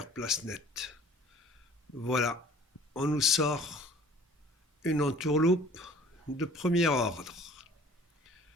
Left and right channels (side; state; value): both; normal; correlation 0.49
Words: place nette. Voilà, on nous sort une entourloupe de premier ordre.